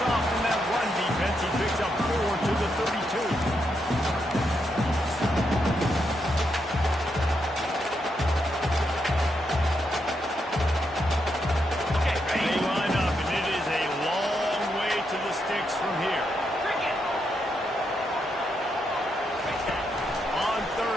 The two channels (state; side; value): normal; both; correlation 0.81